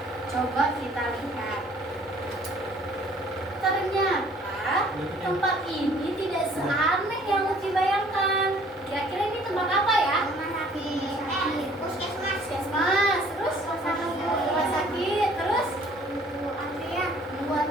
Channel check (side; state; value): both; normal; correlation 0.56